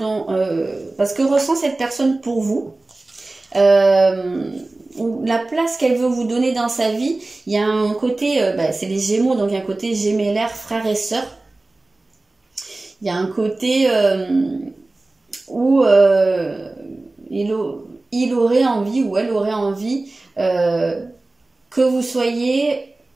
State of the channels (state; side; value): quieter; left; 3.0 dB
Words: parce que ressent cette personne pour vous, la place qu'elle veut vous donner dans sa vie, il y a un côté, c'est les Gémeaux, donc il y a un côté gémellaire, frère et sœur. Il y a un côté où il aurait envie, ou elle aurait envie que vous soyez